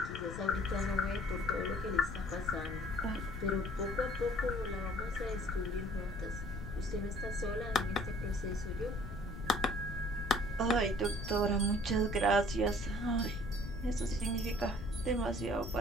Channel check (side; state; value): left; noise; rumble, 9 dB below the sound